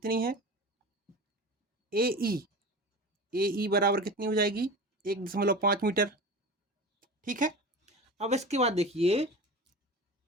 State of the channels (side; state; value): both; normal; correlation 0.31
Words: है, ए ई बराबर कितनी हो जाएगी, 1.5 मीटर। ठीक है, अब इसके बाद देखिए